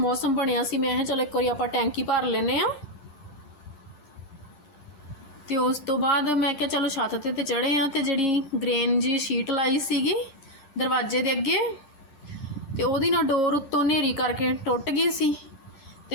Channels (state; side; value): late; right; 10 ms